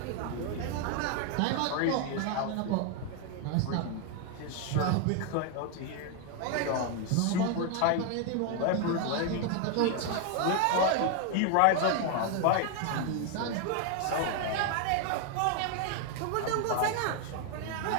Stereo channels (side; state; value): both; different; correlation 0.00